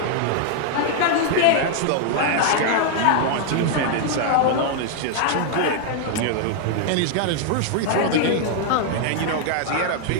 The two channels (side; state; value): both; different; correlation 0.00